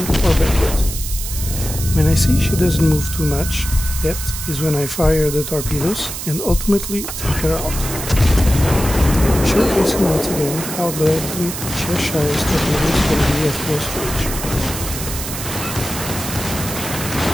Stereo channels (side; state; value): right; noise; hiss, 7 dB below the sound